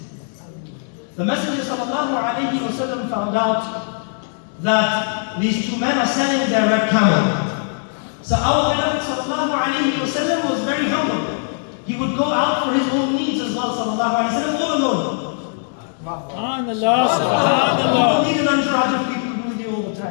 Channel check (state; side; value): silent; right; 65 dB below the other